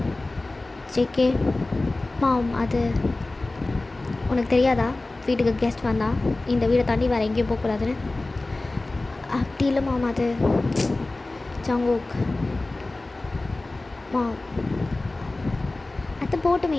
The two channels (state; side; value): quieter; right; 3.0 dB